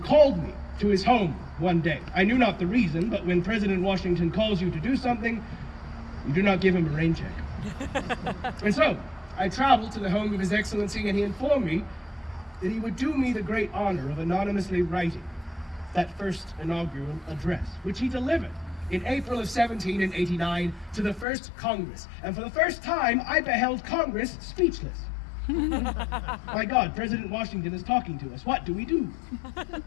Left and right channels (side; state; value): right; drops out; at 21.2 s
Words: me to his home one day. I knew not the reason, but when President Washington calls you to do something, you do not give him a rain check. And so, I traveled to the home of His Excellency, and he informed me that he would do me the great honor of anonymously writing that first inaugural address, which he delivered in April of 1789 to the first Congress. And for the first time, I beheld Congress speechless. My God, President Washington is talking to us. What do we do?